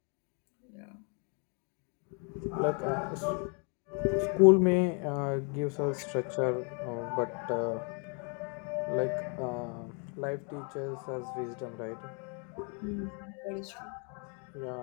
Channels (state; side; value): quieter; right; 37.6 dB